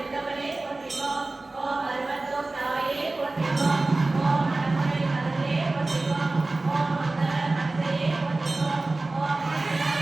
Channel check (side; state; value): left; quieter; 3.1 dB